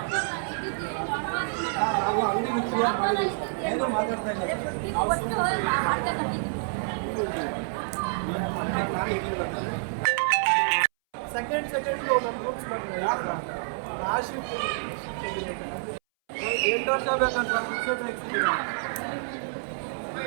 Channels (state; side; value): silent; left; 59 dB below the other